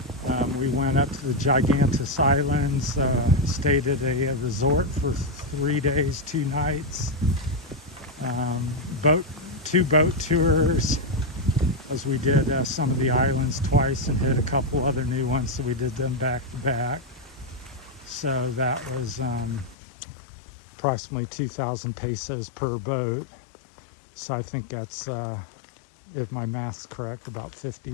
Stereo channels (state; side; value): drops out; right; at 19.8 s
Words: We went up to the Gigantes Islands, stayed at a resort for 3 days, 2 nights. Two boat tours, as we did some of the islands twice and hit a couple other new ones, so we did them back to back. So that was approximately 2,000 pesos per boat. So I think that's, if my math's correct, about